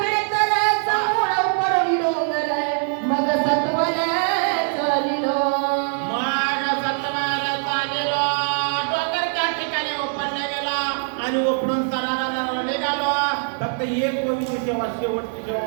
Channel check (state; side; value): silent; left; 62 dB below the other